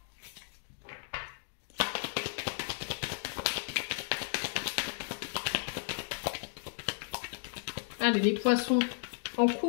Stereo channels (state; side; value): silent; right; digital silence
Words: Allez, les poissons en